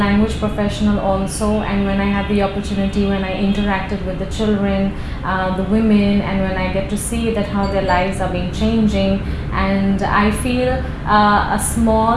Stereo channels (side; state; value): both; identical; correlation 1.00